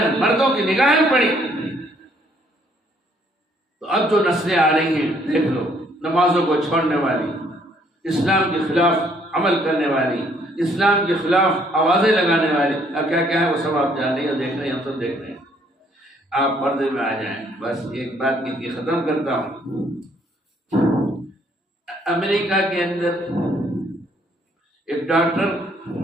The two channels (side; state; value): both; normal; correlation 0.65